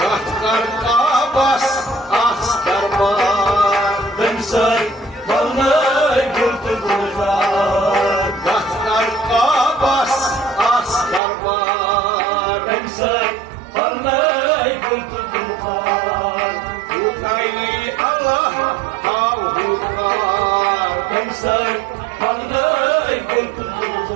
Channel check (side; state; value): left; drops out; at 11.2 s